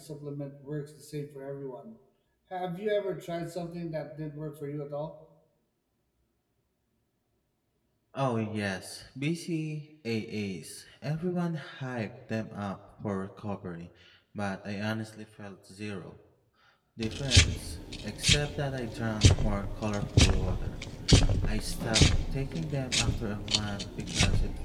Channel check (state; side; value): identical; both; correlation 1.00